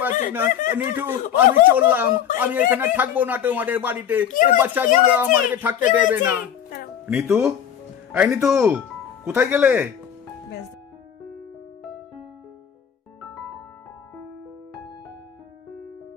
পারছি না। নিঠু, আমি চললাম। আমি এখানে থাকবো না তোমাদের বাড়িতে। এই বাচ্চাগুলো আমাকে থাকতে দেবে না। নিতু, এই নিতু, কোথায় গেলে?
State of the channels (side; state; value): right; quieter; 8.9 dB